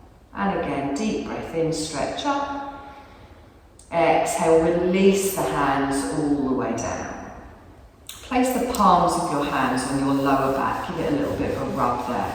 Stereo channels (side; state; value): both; identical; correlation 1.00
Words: And again, deep breath in, stretch up. Exhale, release the hands all the way down. Place the palms of your hands on your lower back. Give it a little bit of a rub there.